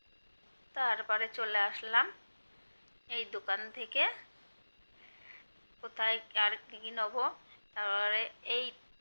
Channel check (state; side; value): inverted; both; correlation -1.00